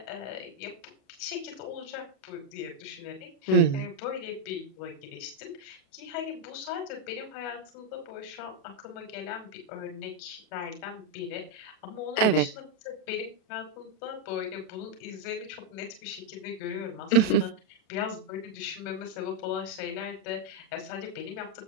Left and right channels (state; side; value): late; right; 37 ms